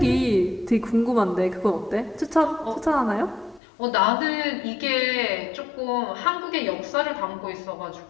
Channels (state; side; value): drops out; right; at 3.6 s